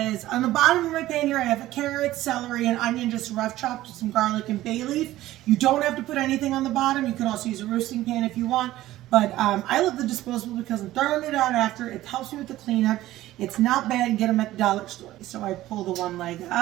on the bottom of my pan here I have a carrot, celery, and onion just rough chopped with some garlic and bay leaf. You don't have to put anything on the bottom. You can also use a roasting pan if you want. But I love the disposable because I'm throwing it out after. It helps me with the cleanup. It's not bad. Get them at the dollar store. So I pull the one leg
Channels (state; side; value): quieter; left; 15.4 dB